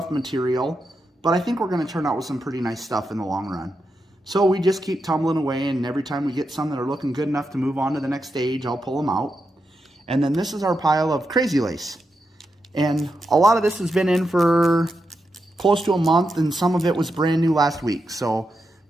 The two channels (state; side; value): normal; both; correlation 0.86